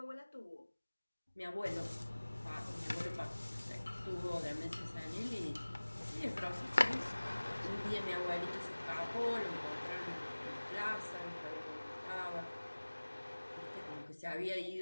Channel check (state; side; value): inverted; both; correlation -1.00